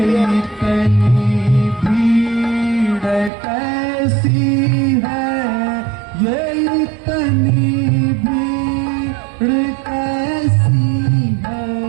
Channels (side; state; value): left; drops out; at 3.3 s